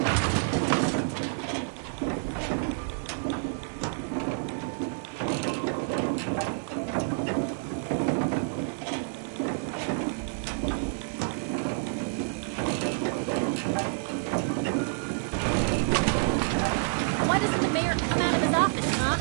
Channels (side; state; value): left; silent; 59 dB below the other